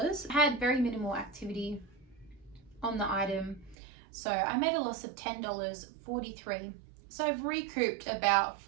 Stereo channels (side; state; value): left; drops out; at 3.8 s